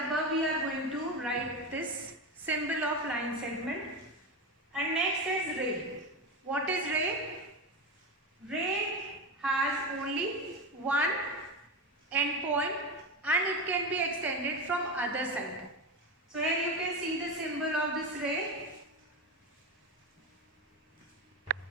we are going to write this symbol of line segment. And next is ray. What is ray? Ray has only one end point and it can be extended from other side. So here you can see the symbol of this ray.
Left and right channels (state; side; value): normal; both; correlation 0.19